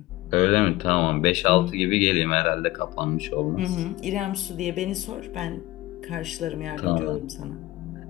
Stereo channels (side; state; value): right; quieter; 18.0 dB